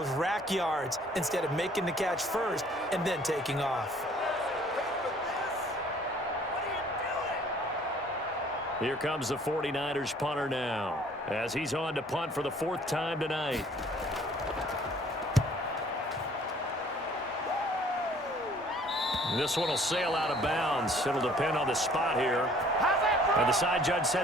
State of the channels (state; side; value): normal; both; correlation 0.56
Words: rack yards instead of making the catch first and then taking off. Here comes the 49ers punter now, as he's on to punt for the 4th time tonight. This one will sail out of bounds. It'll depend on the spot here. And the side judge